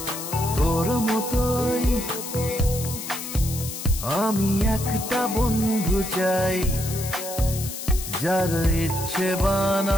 আমি একটা বন্ধু চাই, যার ইচ্ছে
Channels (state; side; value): noise; left; hiss, 8 dB below the sound